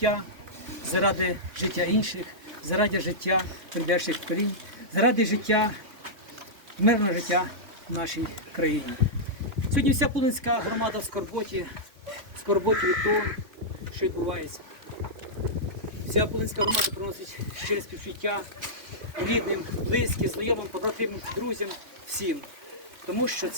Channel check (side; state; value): left; late; 3.6 ms